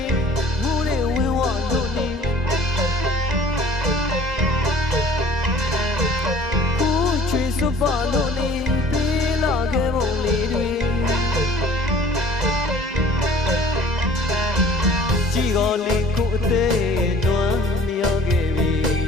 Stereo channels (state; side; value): normal; both; correlation 0.50